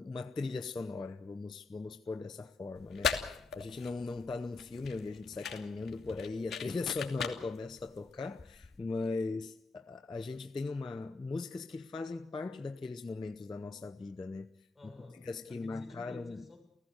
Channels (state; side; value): quieter; right; 3.8 dB